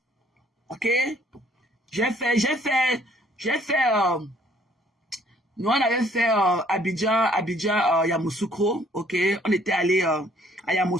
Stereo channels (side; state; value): both; normal; correlation 0.60